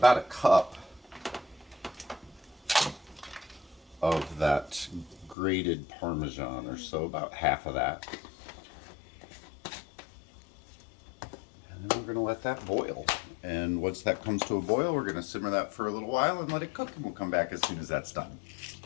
a cup of that grated Parmesan or so, about half of that. And then we're going to let that boil. And once that comes to a boil, we're going to simmer that for a little while and let it cook, and we'll come back as soon as that's done.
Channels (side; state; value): right; drops out; at 5.4 s